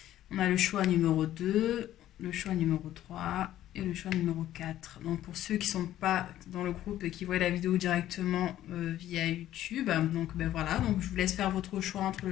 on a le choix numéro 2, le choix numéro 3 et le choix numéro 4. Donc pour ceux qui ne sont pas dans le groupe et qui voient la vidéo directement via YouTube, donc ben voilà, donc je vous laisse faire votre choix entre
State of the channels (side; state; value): right; quieter; 13.0 dB